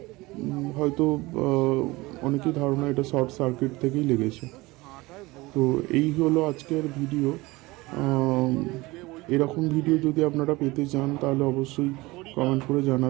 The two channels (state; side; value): quieter; left; 21.4 dB